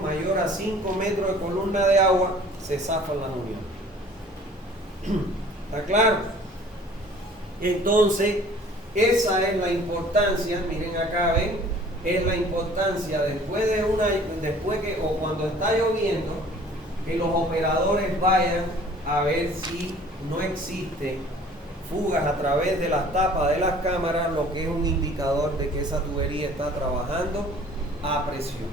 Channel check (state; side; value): normal; both; correlation 0.51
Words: mayor a 5 metros de columna de agua, se zafan las uniones. ¿Está claro? Entonces, esa es la importancia, miren acá, ven, es la importancia después que, o cuando está lloviendo, que los operadores vayan a ver si no existe fugas a través de las tapas de las cámaras, lo que es un indicador de que esa tubería está trabajando a presión.